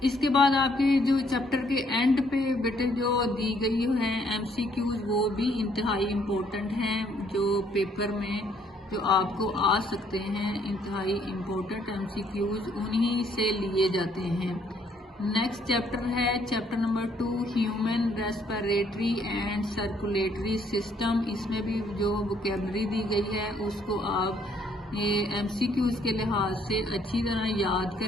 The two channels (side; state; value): both; normal; correlation 0.66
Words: इसके बाद आपके जो चैप्टर के एंड पे बेटे जो दी गई है एमसीक्यूज वो भी इंतहाई इम्पोर्टेंट हैं, जो पेपर में जो आपको आ सकते हैं। इंतहाई इम्पोर्टेंट एमसीक्यूज उन्हीं से लिए जाते हैं। नेक्स्ट चैप्टर है chapter number 2 human respiratory and circulatory system. इसमें भी जो वोकैबुलरी दी गई है उसको आप ये एमसीक्यूज के लिहाज से अच्छी तरह याद